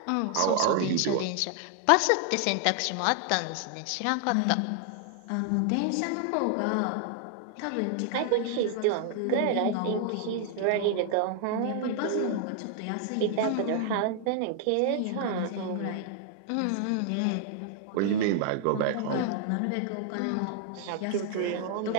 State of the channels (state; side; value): different; both; correlation 0.00